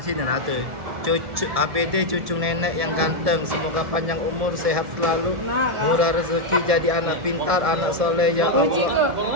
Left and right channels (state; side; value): late; left; 1.7 ms